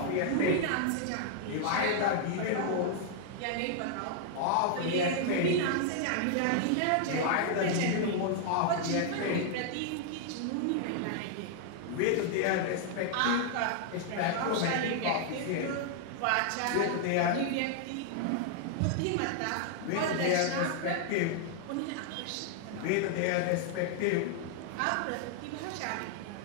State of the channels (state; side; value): different; both; correlation 0.00